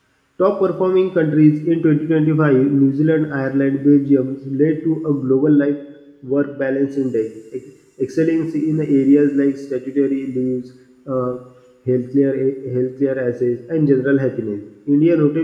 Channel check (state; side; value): identical; both; correlation 1.00